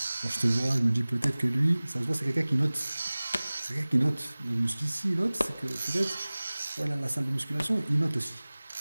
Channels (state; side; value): inverted; both; correlation -0.99